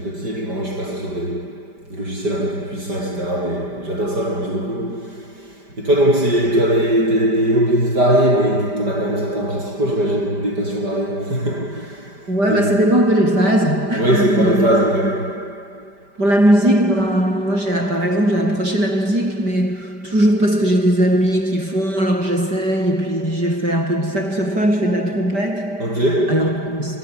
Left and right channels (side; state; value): left; late; 5.1 ms